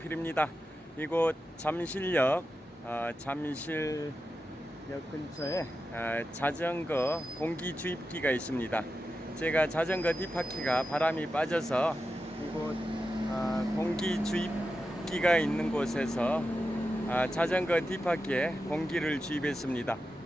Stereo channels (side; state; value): both; normal; correlation 0.90